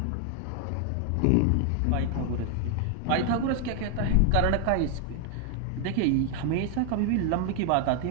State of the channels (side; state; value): both; different; correlation 0.00